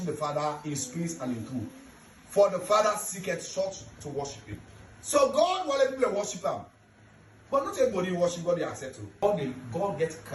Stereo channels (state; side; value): identical; both; correlation 1.00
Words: the Father in spirit and in truth. For the Father seeketh such to worship him. So God will let people worship him. But not everybody worship God they accept him. God gets